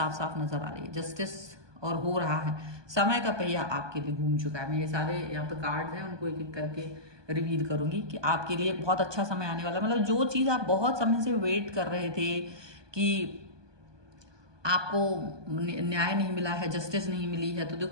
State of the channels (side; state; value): left; late; 1.2 ms